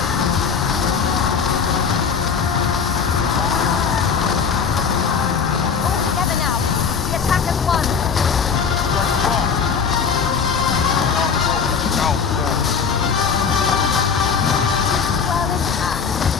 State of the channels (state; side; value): quieter; right; 6.2 dB